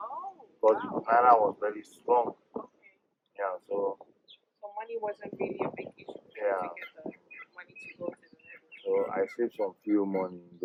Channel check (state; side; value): identical; both; correlation 1.00